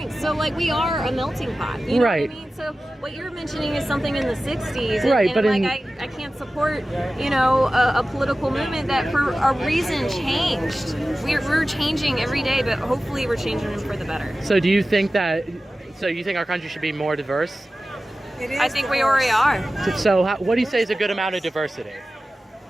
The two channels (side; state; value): both; normal; correlation 0.95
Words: So, we are a melting pot. You know what I mean? So, what you're mentioning is something in the 60s. I can't support, a political movement that for a reason changed. We're changing every day, but hopefully we're changing for the better. So, do you think our country should be more diverse? I think we already are. So what do you say is a good amount of diversity?